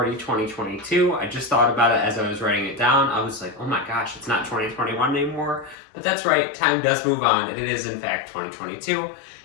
2022. I just thought about it as I was writing it down. I was like, oh my gosh, it's not 2021 anymore. But that's right, time does move on, and it is in fact 2022,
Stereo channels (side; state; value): right; drops out; at 5.8 s